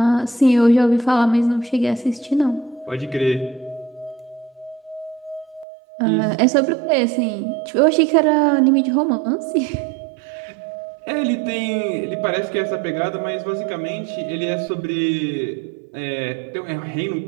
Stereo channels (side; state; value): left; drops out; at 5.7 s